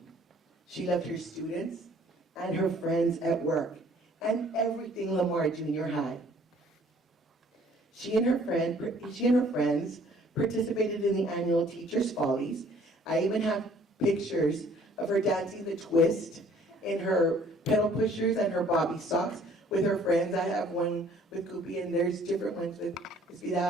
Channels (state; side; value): normal; both; correlation 0.57